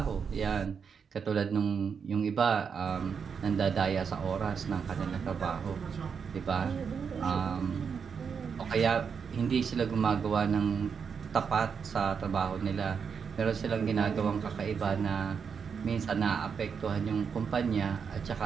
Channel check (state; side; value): quieter; left; 6.4 dB